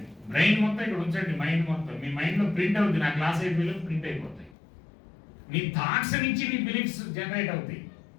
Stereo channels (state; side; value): drops out; right; at 4.5 s